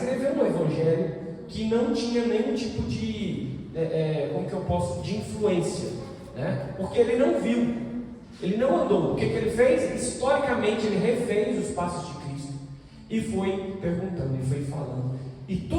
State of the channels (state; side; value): identical; both; correlation 1.00